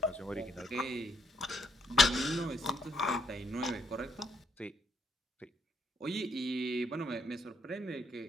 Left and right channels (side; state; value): both; normal; correlation 0.73